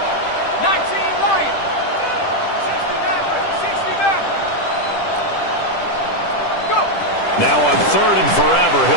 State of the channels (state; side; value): late; right; 10 ms